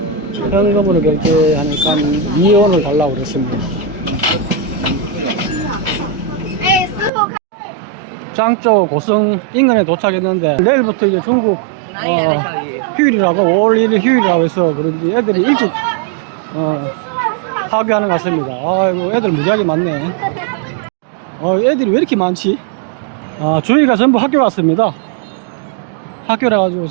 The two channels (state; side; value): drops out; left; at 7.1 s